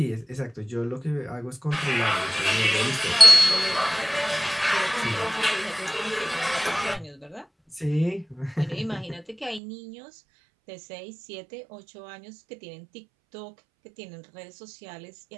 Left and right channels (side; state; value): left; drops out; at 9.6 s